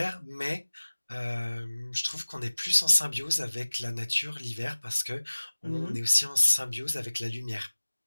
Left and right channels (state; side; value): inverted; both; correlation -1.00